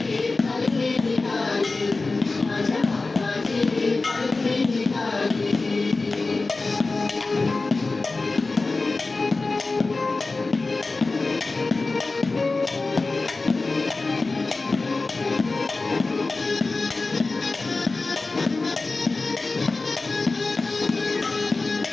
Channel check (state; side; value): quieter; right; 3.6 dB